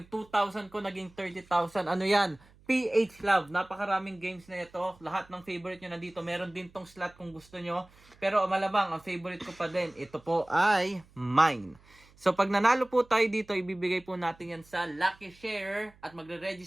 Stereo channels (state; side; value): noise; right; hum, 27 dB below the sound